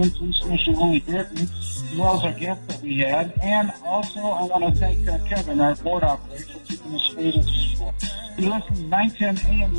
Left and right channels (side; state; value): both; inverted; correlation -1.00